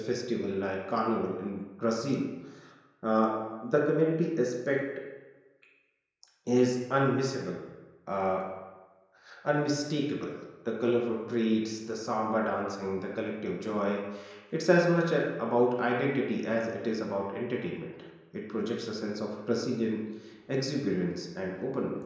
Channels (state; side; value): identical; both; correlation 1.00